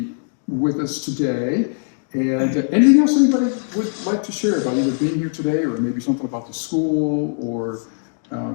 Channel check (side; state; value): right; silent; digital silence